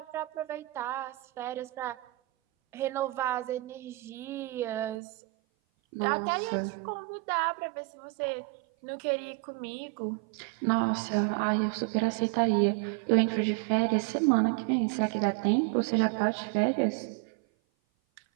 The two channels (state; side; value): drops out; left; at 5.0 s